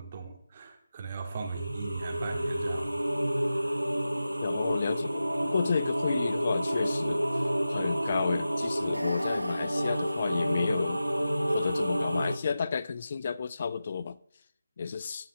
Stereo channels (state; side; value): inverted; both; correlation -0.92